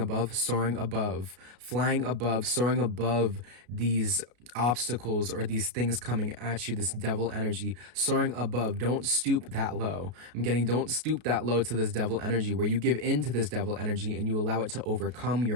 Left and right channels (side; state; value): left; late; 33 ms